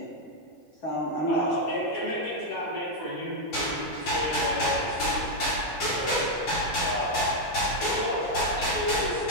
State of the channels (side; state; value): right; late; 8.6 ms